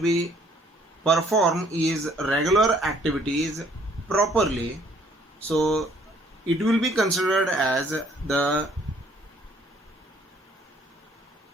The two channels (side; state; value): both; normal; correlation 0.62